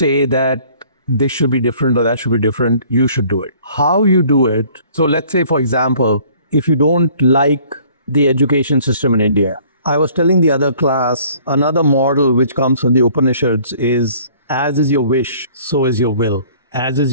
that this should be different or that should be different. You should do it. How you do it. So let's say, for example, if you don't like the education system in India, I was telling the other class, another model which comes from the Upanishads is as is your wish, so is your will. As is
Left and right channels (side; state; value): both; inverted; correlation -0.55